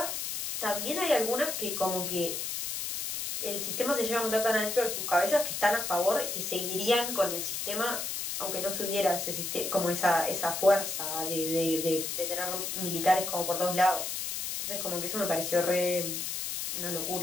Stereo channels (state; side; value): noise; left; hiss, 3 dB below the sound